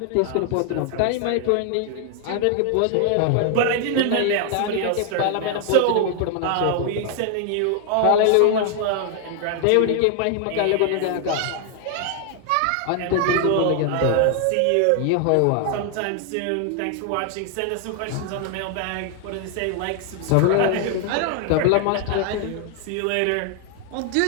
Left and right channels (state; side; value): different; both; correlation 0.00